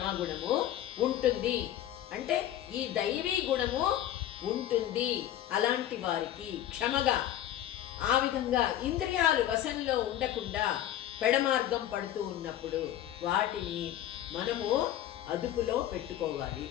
ఉంటుంది అంటే ఈ దైవీ గుణము ఉంటుంది అలాంటి వారికి క్షమగా. ఆ విధంగా ఇంద్రియాలు వశంలో ఉండకుండా పెడమార్గం పడుతూ ఉన్నప్పుడు వాటిని మనము అదుపులో పెట్టుకోవాలి.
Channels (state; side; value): quieter; right; 12.1 dB